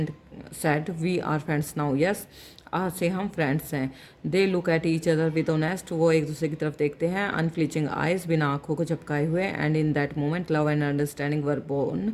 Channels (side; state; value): both; identical; correlation 1.00